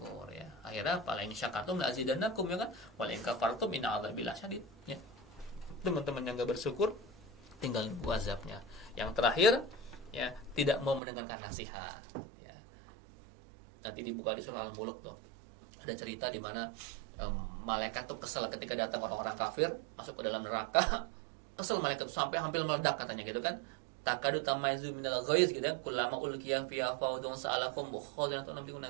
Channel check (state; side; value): drops out; left; at 11.0 s